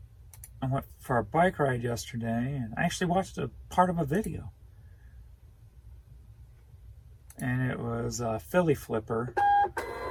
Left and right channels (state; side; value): identical; both; correlation 1.00